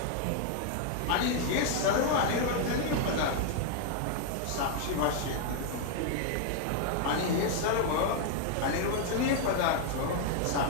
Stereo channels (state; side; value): different; both; correlation 0.00